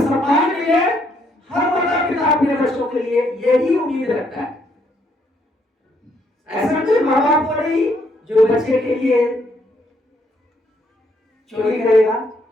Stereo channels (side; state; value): both; normal; correlation 0.72